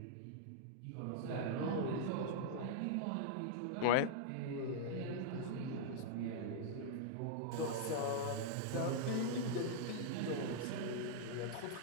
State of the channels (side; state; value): both; different; correlation -0.02